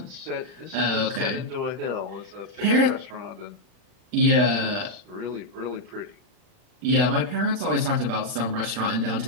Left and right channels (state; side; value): late; left; 39 ms